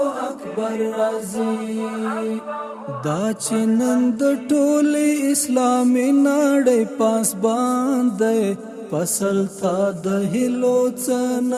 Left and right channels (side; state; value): both; identical; correlation 1.00